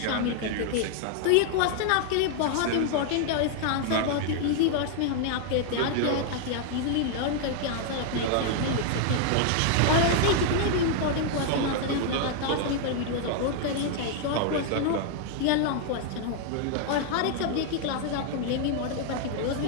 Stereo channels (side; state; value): both; different; correlation 0.00